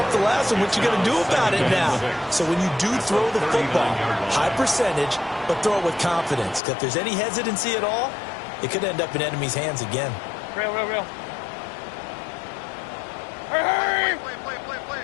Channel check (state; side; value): drops out; right; at 6.6 s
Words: the last one. What you going to do about it now? So when you do throw the football, high percentage, but throw it with confidence. Because if there's any hesitancy at all, it could end up in enemy's hands again. Real. Hurry!